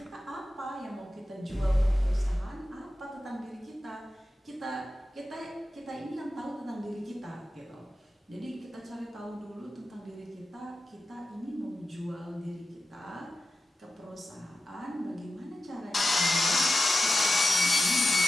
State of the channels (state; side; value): normal; both; correlation 0.93